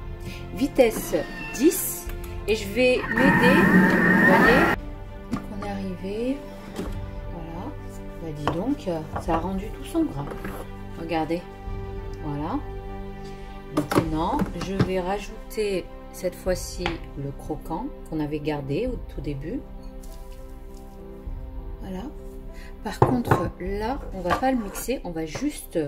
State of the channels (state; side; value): identical; both; correlation 1.00